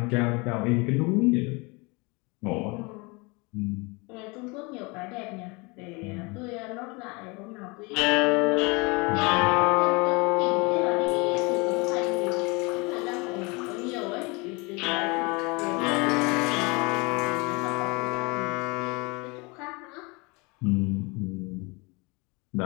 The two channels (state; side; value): quieter; right; 27.8 dB